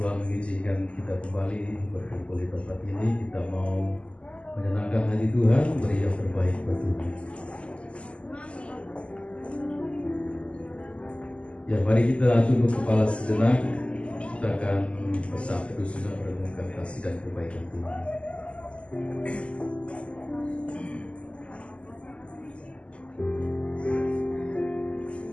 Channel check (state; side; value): late; right; 0.056 ms